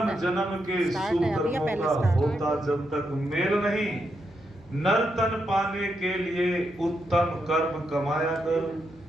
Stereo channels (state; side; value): noise; left; hum, 26 dB below the sound